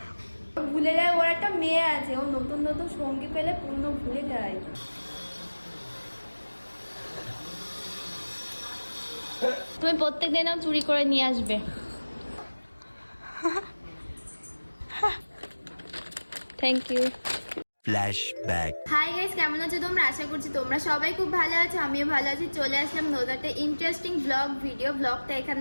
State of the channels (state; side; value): inverted; both; correlation -1.00